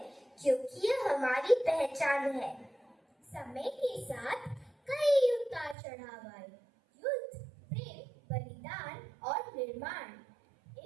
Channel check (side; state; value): left; drops out; at 5.8 s